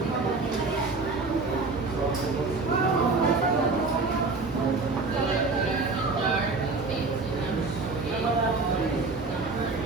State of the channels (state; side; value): quieter; left; 3.8 dB